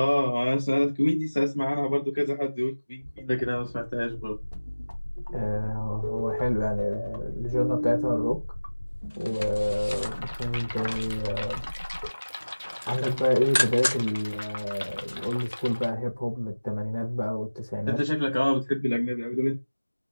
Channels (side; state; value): both; inverted; correlation -1.00